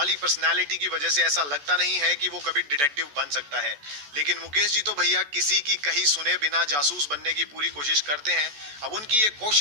पर्सनालिटी की वजह से ऐसा लगता नहीं है कि वो कभी डिटेक्टिव बन सकता है. लेकिन मुकेश जी तो भैया किसी की कहीं सुने बिना जासूस बनने की पूरी कोशिश करते हैं. अब उनकी ये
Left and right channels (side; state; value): left; late; 14 ms